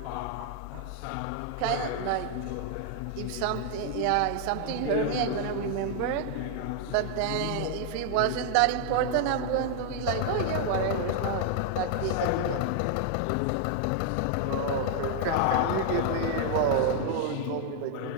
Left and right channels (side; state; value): both; different; correlation 0.00